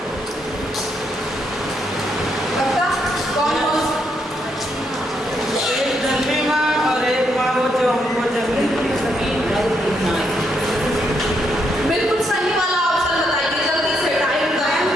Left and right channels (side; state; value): both; normal; correlation 0.77